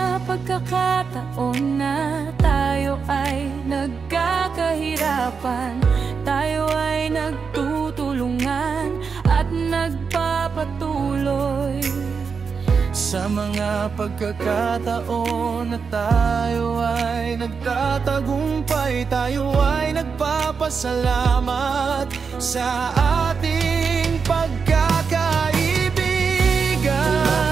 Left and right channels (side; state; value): left; quieter; 5.6 dB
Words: pagkakataon na tayo ay nagkakahirapan, tayo ay nagtutulungan at nagpapatuloy. Sa mga pagkakataon na tayo ay nagtatagumpay, tayo ay nagpapasalamat sa ating pagkakaibigan.